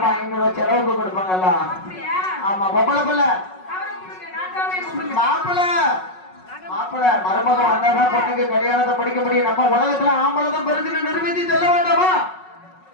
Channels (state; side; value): late; right; 5.4 ms